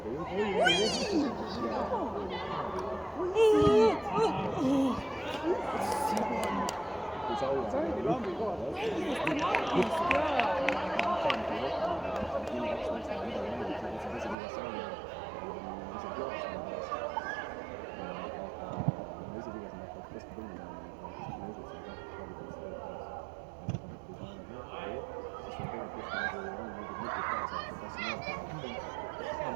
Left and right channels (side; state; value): left; drops out; at 14.4 s